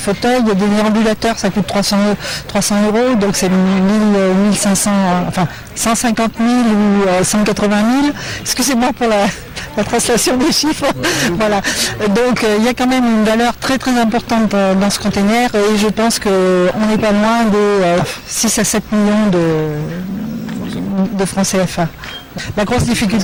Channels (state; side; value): identical; both; correlation 1.00